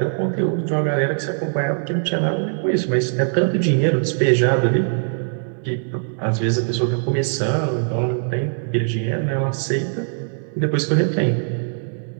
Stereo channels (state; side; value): silent; left; digital silence